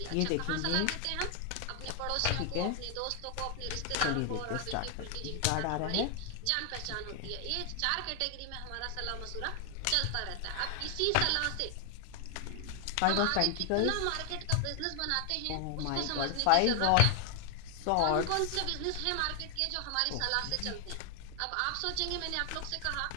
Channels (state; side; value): different; both; correlation 0.00